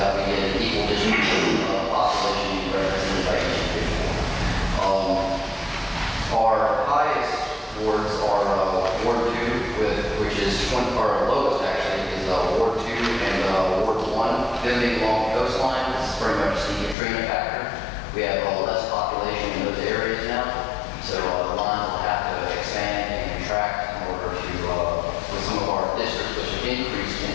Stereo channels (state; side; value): drops out; right; at 16.9 s